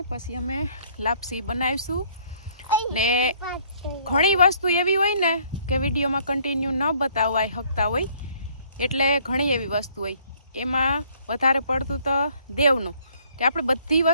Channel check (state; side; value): inverted; both; correlation -0.61